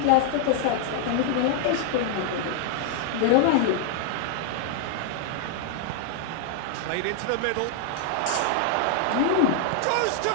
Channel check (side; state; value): both; different; correlation 0.00